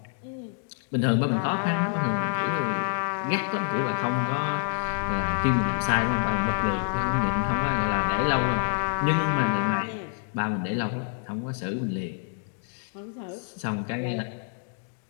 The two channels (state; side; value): silent; right; 60 dB below the other